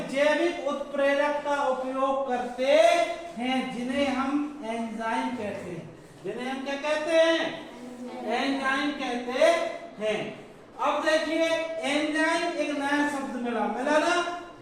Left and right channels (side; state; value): both; identical; correlation 1.00